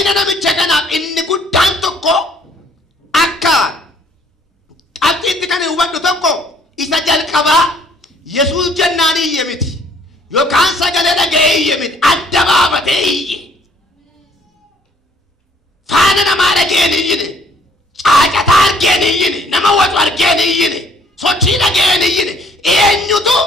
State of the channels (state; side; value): normal; both; correlation 0.62